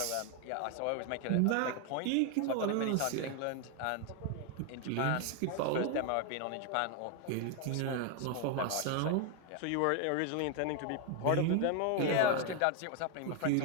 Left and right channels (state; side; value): different; both; correlation 0.01